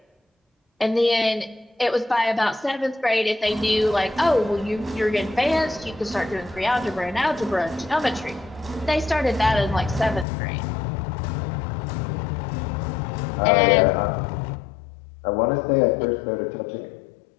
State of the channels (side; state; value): right; drops out; at 10.2 s